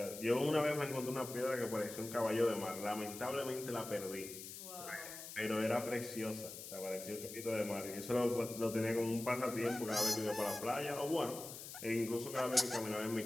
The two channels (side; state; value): left; noise; hiss, 11 dB below the sound